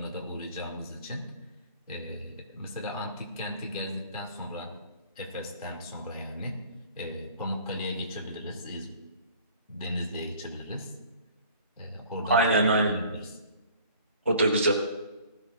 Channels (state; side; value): inverted; both; correlation -0.51